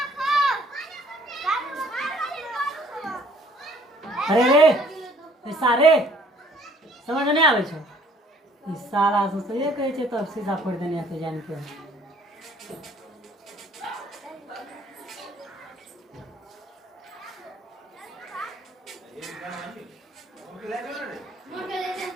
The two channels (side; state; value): both; normal; correlation 0.58